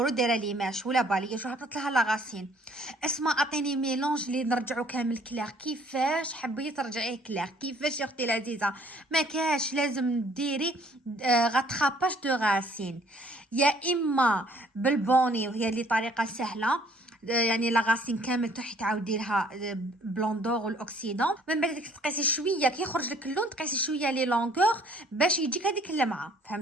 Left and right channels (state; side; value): normal; both; correlation 0.59